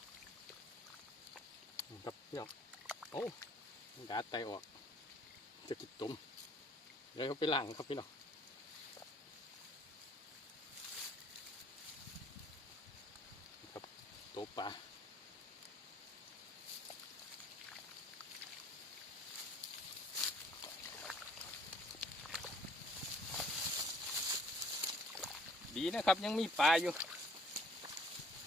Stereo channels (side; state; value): both; normal; correlation 0.59